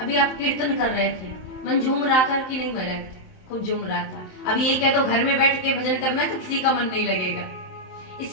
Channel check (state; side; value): late; right; 27 ms